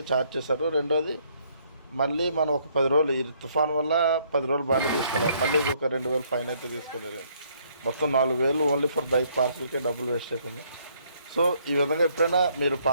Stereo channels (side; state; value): both; inverted; correlation -0.67